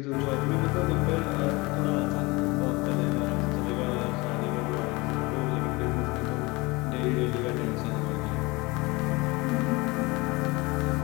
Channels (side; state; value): right; quieter; 24.0 dB